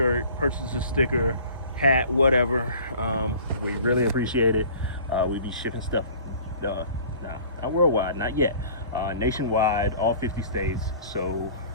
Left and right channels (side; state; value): both; inverted; correlation -0.47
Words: purchase a sticker, hat, whatever. We really appreciate it. We be shipping stuff, not worldwide, not yet, nationwide, all 50 states, so